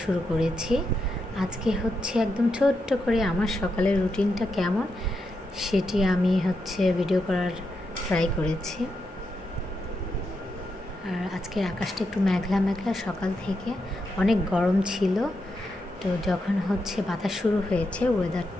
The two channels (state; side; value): normal; both; correlation 0.84